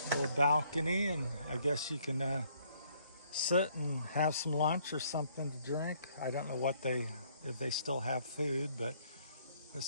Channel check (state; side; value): inverted; both; correlation -0.65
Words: little balcony, and I guess you can sit and have some lunch or something to drink. I don't know if they still have food, but